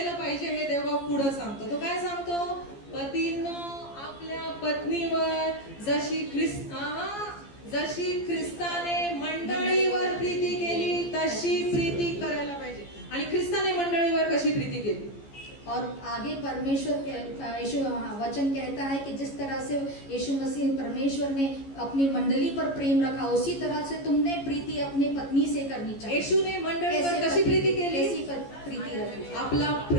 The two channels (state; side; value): late; right; 14 ms